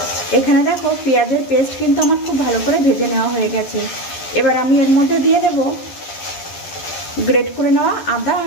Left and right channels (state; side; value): late; right; 11 ms